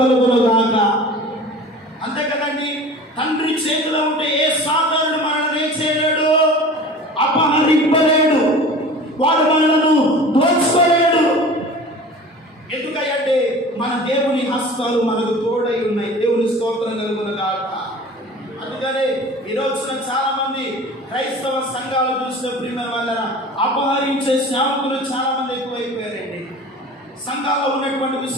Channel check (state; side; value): normal; both; correlation 0.40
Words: కలుగును గాక. చేతిలో ఉంటే ఏ సాతానుడు మనల్ని ఏం చేయలేడు, అపహరింపలేడు, వాడు మనలను దోచుకోలేడు. ఎందుకంటే మన దేవుని హస్తాలు మనకు తోడై ఉన్నాయి. దేవుని స్తోత్రం కలుగునుగాక. అందుకనే ఈ రోజున చాలా మంది క్రైస్తవ సంఘాలు చూసిన ప్రియమైన వాళ్ళ అపహరించే సేవకులు చాలా మంది ఎక్కువైపోయారండి. సంఘాల్లో ఉన్నటువంటి